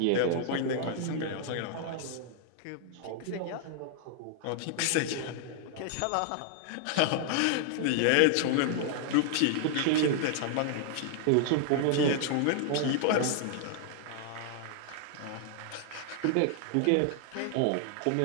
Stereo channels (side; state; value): both; different; correlation 0.00